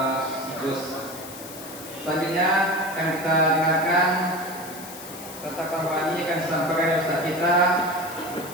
Gus. Selanjutnya akan kita dengarkan serta kampanye akan disampaikan oleh Ustaz kita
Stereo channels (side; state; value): left; noise; hiss, 14 dB below the sound